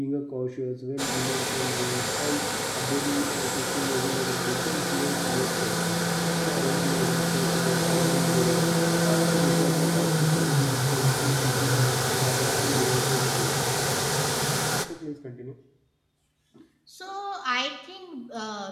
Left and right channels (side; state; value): both; identical; correlation 1.00